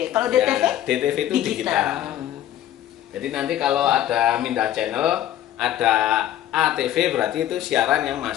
Kalau Ya, DTP? DTV itu digital. Jadi nanti kalau ada mindah channel, ada ATV berarti itu siaran yang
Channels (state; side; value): quieter; right; 12.1 dB